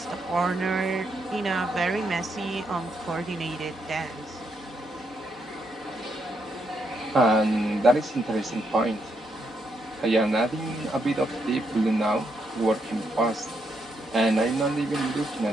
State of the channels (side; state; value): both; normal; correlation 0.78